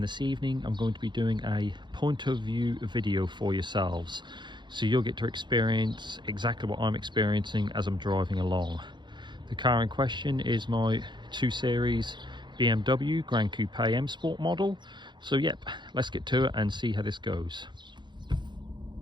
this evening I'm going to be doing a point of view video for yourselves. So you'll get to experience exactly what I'm experiencing as I'm driving along. The car in question is my 2 Series BMW Gran Coupe Msport model. So yep, let's get to it and see how this goes.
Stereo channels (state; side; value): late; left; 0.22 ms